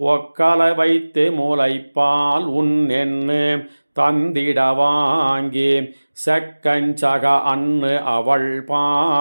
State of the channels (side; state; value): both; inverted; correlation -1.00